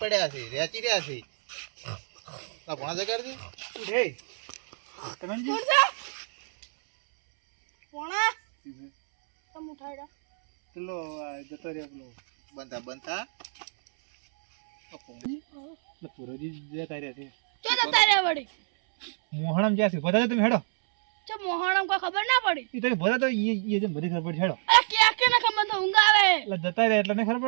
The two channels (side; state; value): left; silent; 60 dB below the other